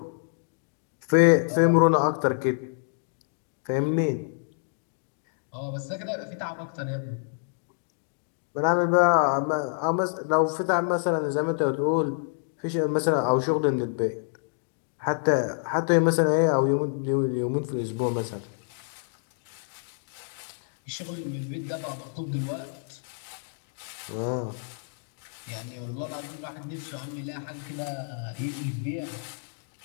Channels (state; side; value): silent; right; digital silence